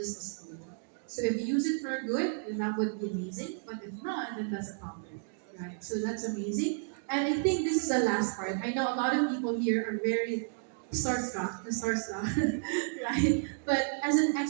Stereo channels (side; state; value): left; silent; digital silence